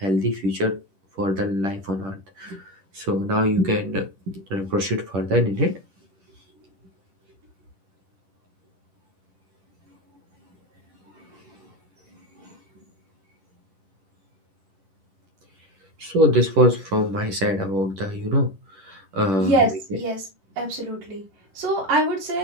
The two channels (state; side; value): late; left; 10 ms